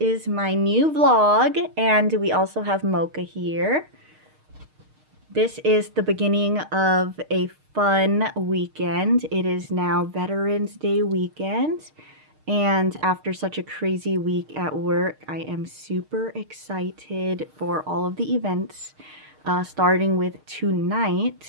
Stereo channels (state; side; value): late; left; 6.5 ms